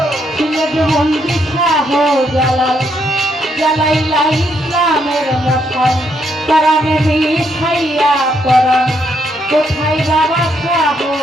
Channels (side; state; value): both; normal; correlation 0.75